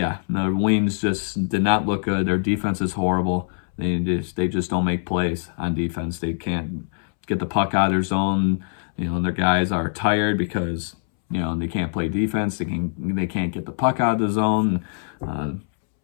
the Wings just did not look good. Their defense is horrible. They just don't make plays on defense. They can't get the puck out of their zone. Their guys are tired because, they can't play defense. They can't get the puck out of the zone.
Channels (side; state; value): right; silent; 63 dB below the other